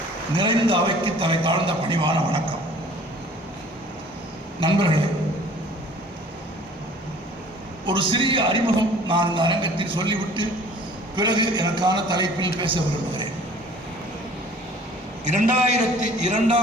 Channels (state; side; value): normal; both; correlation 0.51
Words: நிறைந்த அவைக்கு தலை தாழ்ந்த பணிவான வணக்கம். நண்பர்களே, ஒரு சிறிய அறிமுகம் நான் இந்த அரங்கத்தில் சொல்லிவிட்டு பிறகு எனக்கான தலைப்பில் பேச விரும்புகிறேன்.